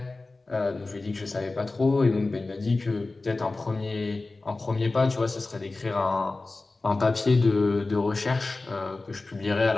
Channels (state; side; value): quieter; right; 3.4 dB